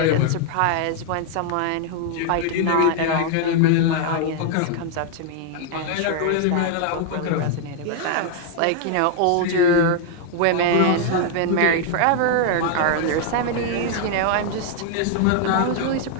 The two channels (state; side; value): different; both; correlation 0.00